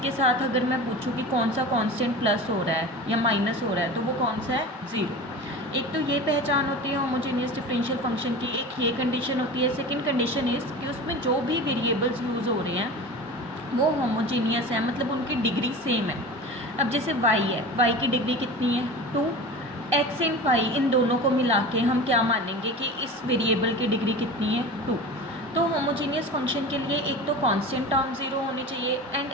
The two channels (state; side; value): normal; both; correlation 0.33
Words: साथ अगर मैं पूछूं कि कौन सा कांस्टेंट प्लस हो रहा है या माइनस हो रहा है, तो वो कौन सा है? ज़ीरो। एक तो ये पहचान होती है होमोजेनियस डिफरेंशियल फंक्शन की, एक ये कंडीशन होती है। सेकंड कंडीशन इज़ कि उसमें जो भी वेरिएबल्स यूज़ हो रहे हैं वो होमोजेनियस है, मतलब उनकी डिग्री सेम है। अब जैसे y है, y की डिग्री कितनी है? 2। x एंड y, इन दोनों को मिला के हम क्या मानेंगे कि इस वेरिएबल की डिग्री कितनी है? 2। तो होमोजेनियस फंक्शन के लिए एक तो कांस्टेंट टर्म ज़ीरो होनी चाहिए एंड